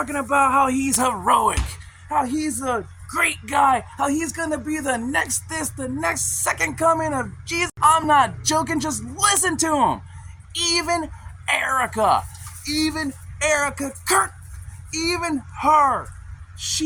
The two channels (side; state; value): both; identical; correlation 1.00